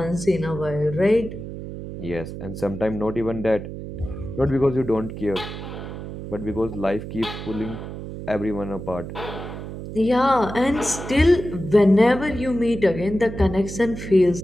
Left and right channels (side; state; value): right; noise; hum, 9 dB below the sound